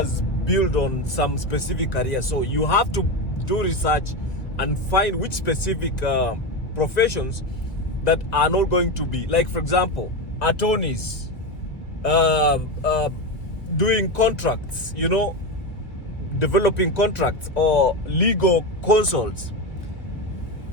built on some specific career. So you have to do research and find which specific professions that are not going to be, like, for example, attorneys, doing contracts, developing contracts, or legal consults.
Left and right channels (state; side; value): late; right; 1.6 ms